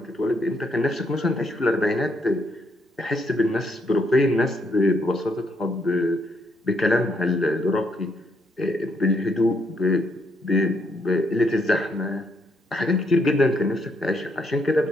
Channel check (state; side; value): normal; both; correlation 0.74